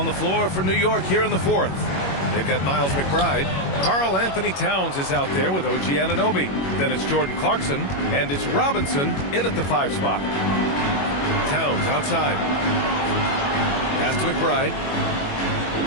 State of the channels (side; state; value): right; late; 21 ms